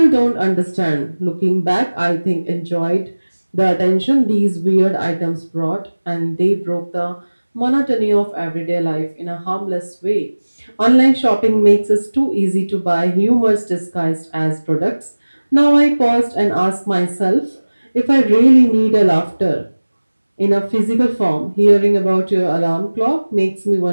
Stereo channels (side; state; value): both; inverted; correlation -1.00